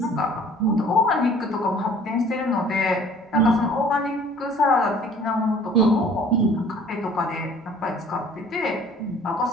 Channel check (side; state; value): both; normal; correlation 0.52